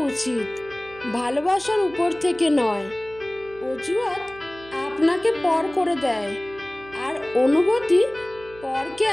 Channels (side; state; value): right; noise; hum, 21 dB below the sound